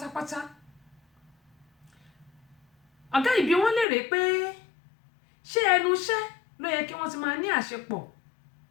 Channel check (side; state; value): right; drops out; at 3.9 s